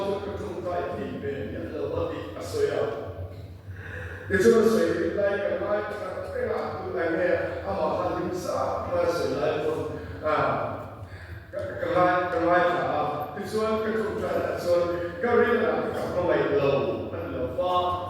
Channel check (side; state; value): both; identical; correlation 1.00